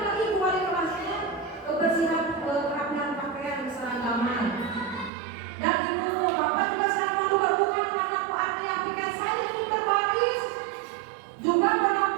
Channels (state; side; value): drops out; left; at 5.1 s